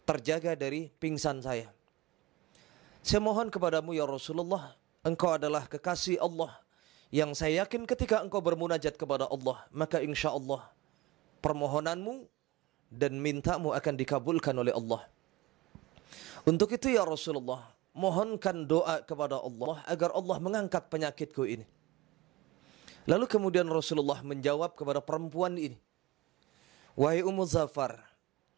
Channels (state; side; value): quieter; left; 18.2 dB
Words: terjaga dari pingsan saya. Saya mohon kepadamu ya Rasulullah, engkau adalah kekasih Allah yang saya yakin ketika engkau bermunajat kepada Allah, maka insya Allah permohonanmu dan mintamu akan dikabulkan oleh Allah. Untuk itu ya Rasulullah, mohonkan doa kepada Allah agar Allah mengangkat penyakitku ini." Lalu kemudian Rasulullah menjawab kepada perempuan ini, "Wahai Ummu Zafar,